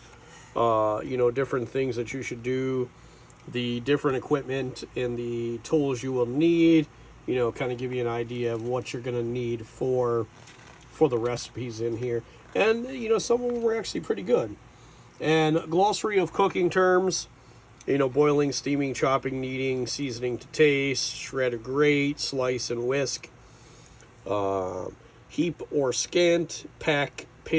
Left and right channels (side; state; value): both; identical; correlation 1.00